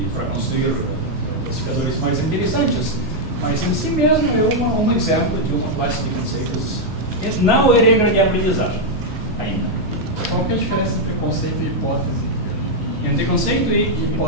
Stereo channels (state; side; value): normal; both; correlation -0.01